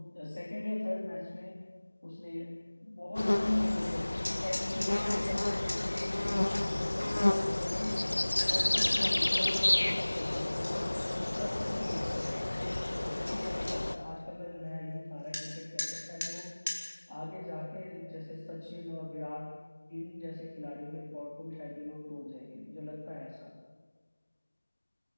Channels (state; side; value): inverted; both; correlation -1.00